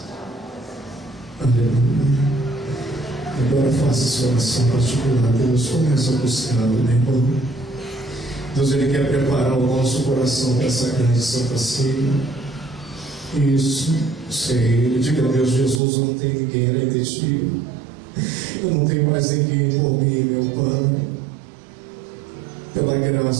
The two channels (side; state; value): left; drops out; at 15.8 s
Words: Aleluia. Agora faça sua oração particular. Deus, começa a buscá-lo, meu irmão. Deus, Ele quer preparar o nosso coração para essa grande Santa Ceia. Isso, sei. Diga a Deus: Jesus, eu não tenho ninguém além de ti. Eu não tenho mais ninguém por mim, meu Pai. Pela